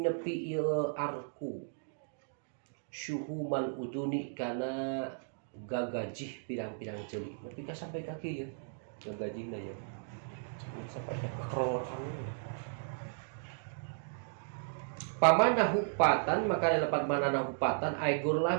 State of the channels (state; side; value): silent; left; digital silence